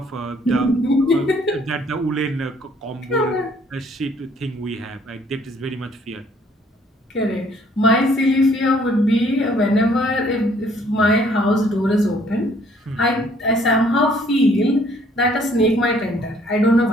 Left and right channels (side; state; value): both; normal; correlation 0.62